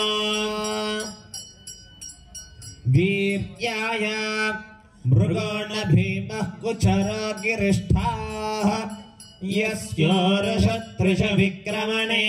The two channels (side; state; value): both; identical; correlation 1.00